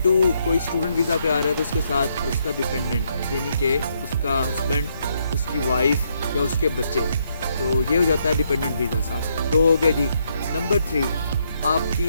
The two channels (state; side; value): inverted; both; correlation -0.75